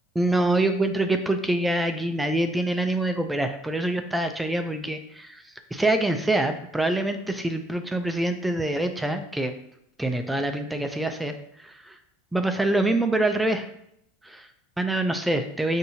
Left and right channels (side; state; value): both; normal; correlation 0.77